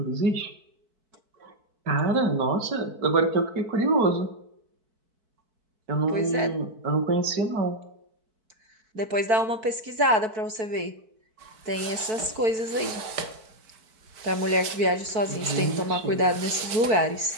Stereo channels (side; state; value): left; late; 4.6 ms